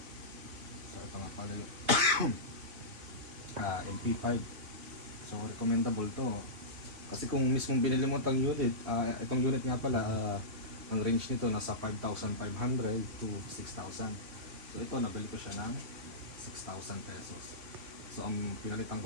So ito nga pala yung MP5. So recommendable to. Kasi kung mismong binili mo itong unit, itong unit nga pala, ang range nito nasa 5,500 to 6,000. So ito, nabili ko siya ng 6,000 pesos. So ang pinalitan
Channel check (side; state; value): left; late; 3.5 ms